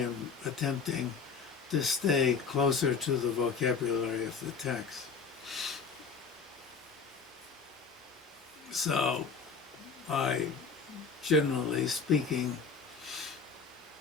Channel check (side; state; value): right; quieter; 5.3 dB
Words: attempting, to stay closer to the vocabulary of the text. So, I, generally speaking,